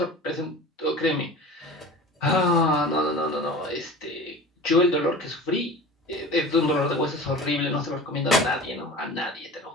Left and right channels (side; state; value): both; normal; correlation 0.37